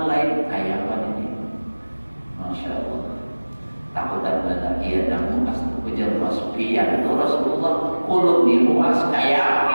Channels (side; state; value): both; inverted; correlation -1.00